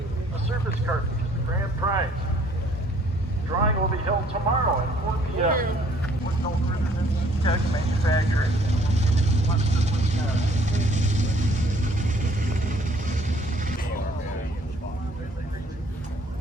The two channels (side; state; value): both; normal; correlation 0.60